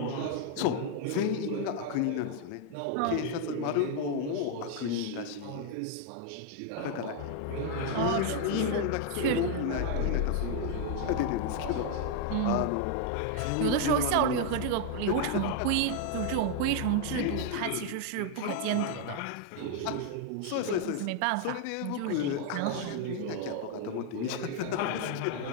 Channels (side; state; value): both; different; correlation 0.00